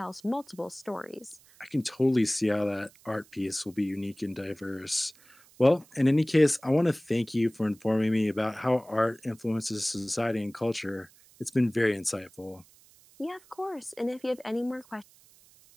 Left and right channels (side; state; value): right; noise; hiss, 27 dB below the sound